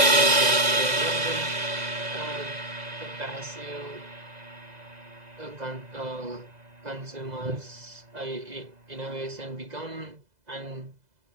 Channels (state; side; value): late; left; 2.0 ms